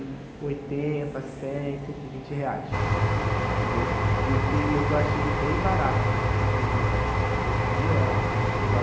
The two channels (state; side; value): identical; both; correlation 1.00